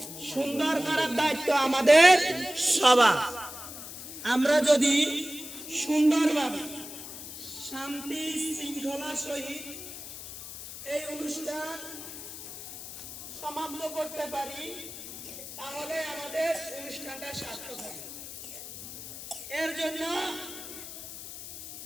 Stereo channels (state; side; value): noise; left; hiss, 11 dB below the sound